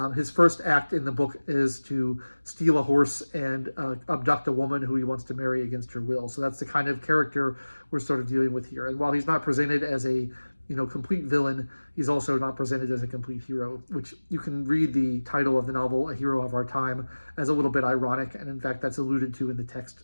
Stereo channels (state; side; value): inverted; both; correlation -1.00